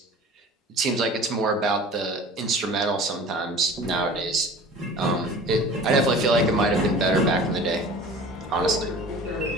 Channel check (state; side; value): normal; both; correlation 0.41